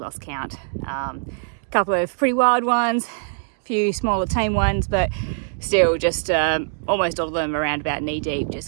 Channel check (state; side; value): silent; left; digital silence